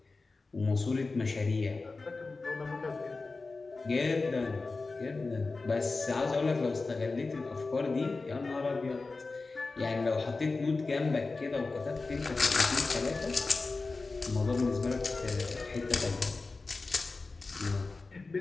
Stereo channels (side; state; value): right; quieter; 3.8 dB